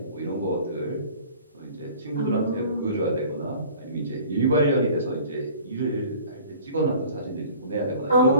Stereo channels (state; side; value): inverted; both; correlation -0.47